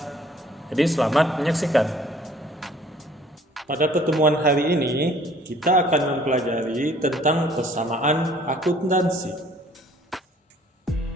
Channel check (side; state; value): both; normal; correlation 0.56